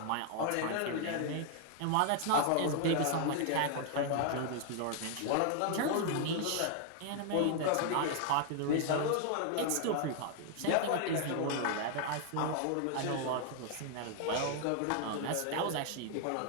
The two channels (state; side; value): different; both; correlation 0.00